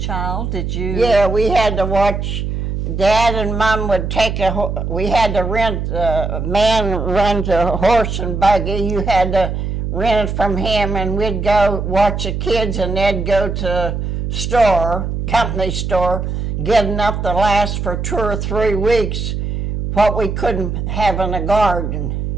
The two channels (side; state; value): right; noise; hum, 3 dB below the sound